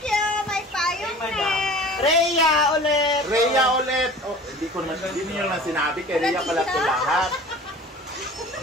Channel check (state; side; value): normal; both; correlation 0.42